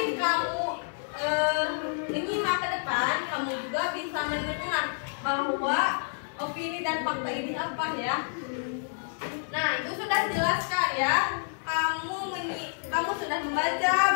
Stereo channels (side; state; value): right; silent; 59 dB below the other